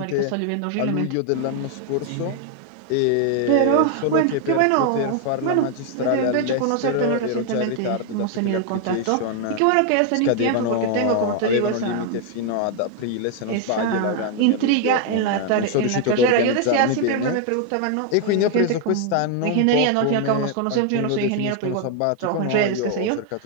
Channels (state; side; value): different; both; correlation 0.01